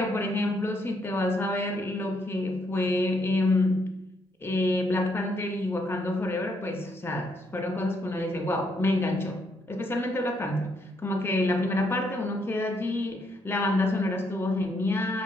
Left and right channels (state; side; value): normal; both; correlation 0.74